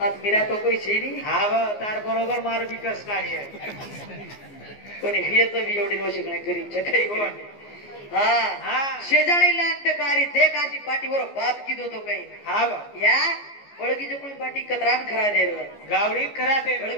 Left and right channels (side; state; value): right; late; 14 ms